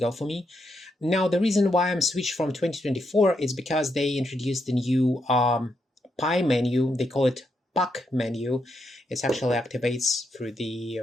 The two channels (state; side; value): normal; both; correlation 0.81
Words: for me. Now the reason why I'm switched from 2024 is because they introduced the new pie menu. They call it puck menu. It actually activates through